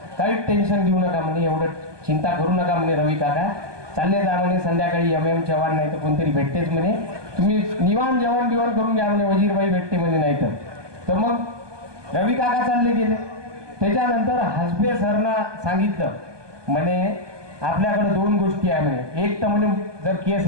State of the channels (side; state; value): left; late; 1.2 ms